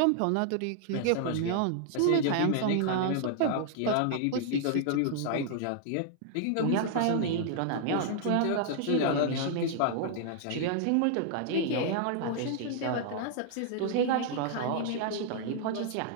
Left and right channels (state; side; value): different; both; correlation -0.01